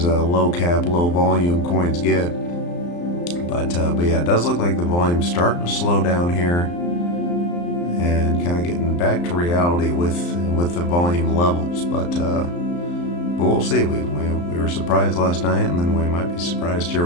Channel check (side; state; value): right; late; 34 ms